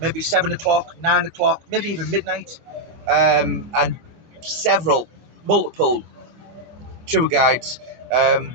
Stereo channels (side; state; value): left; late; 25 ms